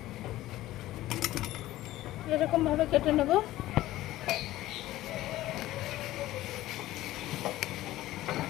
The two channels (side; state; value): right; quieter; 15.7 dB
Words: এরকম ভাবে কেটে নেব।